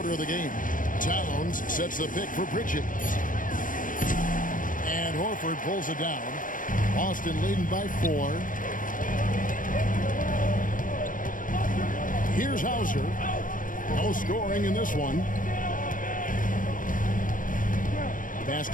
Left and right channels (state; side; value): late; right; 0.39 ms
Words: of the game. Towns sets the pick for Pritchard. And Horford pulls it down. Boston leading by 4. Here's Hauser. No scoring in this one. Pass